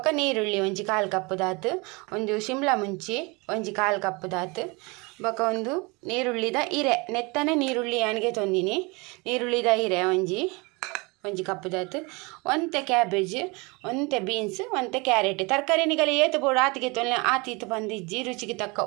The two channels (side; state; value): left; quieter; 27.3 dB